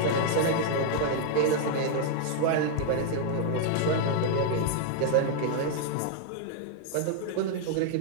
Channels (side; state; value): both; different; correlation 0.00